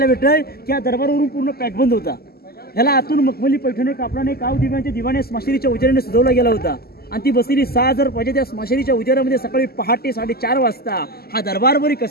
भेटतोय की हा दरबारावरून पूर्ण पॅकबंद होता. ह्याला आतून मखमली पैठणी कापडाने काव दिव्यांच्या दिवाने स्मशानीच्या उजेडाने सजवला गेला होता आणि ती बसलेली 6000 प्रजा त्या स्मशानीच्या उजेडामध्ये सकाळी पहाटे 4:30 वाजता हा दरबार बरी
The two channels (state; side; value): late; right; 0.45 ms